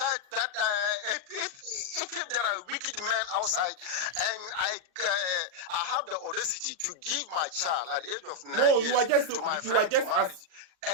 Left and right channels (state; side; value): late; left; 39 ms